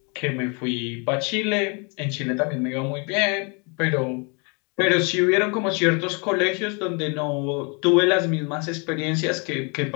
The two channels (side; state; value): right; quieter; 33.6 dB